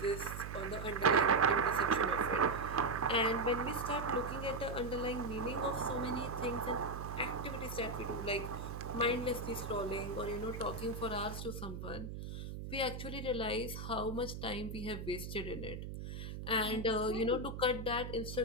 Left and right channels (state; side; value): noise; right; hum, 7 dB below the sound